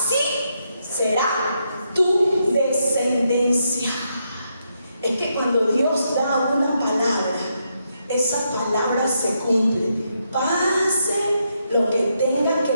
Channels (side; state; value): both; inverted; correlation -0.80